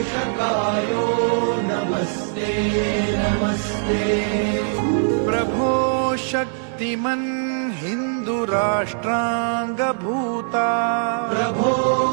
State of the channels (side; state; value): left; silent; digital silence